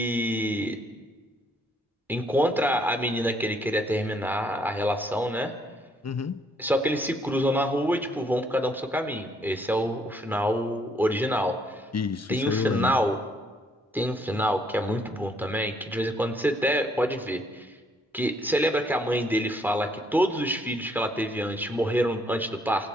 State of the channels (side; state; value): both; normal; correlation 0.68